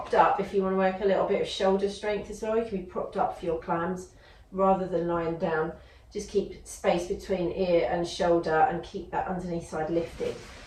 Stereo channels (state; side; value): identical; both; correlation 1.00